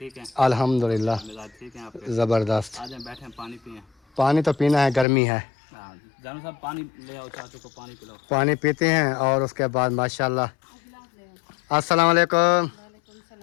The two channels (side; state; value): right; drops out; at 5.1 s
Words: है? अल्हम्दुलिल्लाह मिजाज ठीक है आपके? ज़बरदस्त। आ जाए बैठे हैं, पानी पिए। पानी तो पीना है, गर्मी है। हाँ जानू साहब पानी ले आओ, चाचू को पानी पिलाओ। पानी पीते हैं और उसके बाद माशाल्लाह। अस्सलाम वालेकुम।